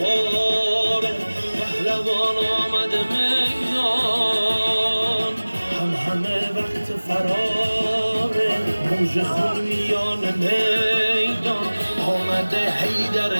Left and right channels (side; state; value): both; inverted; correlation -1.00